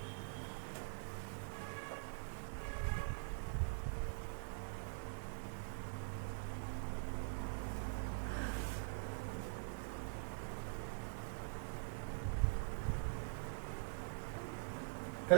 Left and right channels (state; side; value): silent; left; digital silence